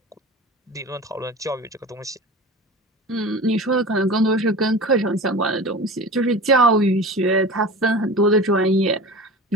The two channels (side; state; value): both; normal; correlation 0.34